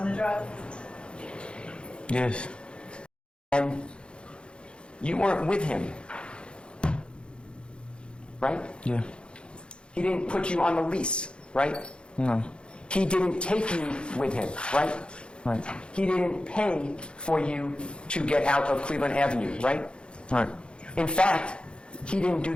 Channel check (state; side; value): late; right; 0.055 ms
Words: the drug? Yes. And you weren't with him, right? Yeah. He didn't put you on the lease, right? No. He didn't take you with him, right? Right. He didn't pay for you to get out of Cleveland Avenue, right? Right. In fact, he didn't do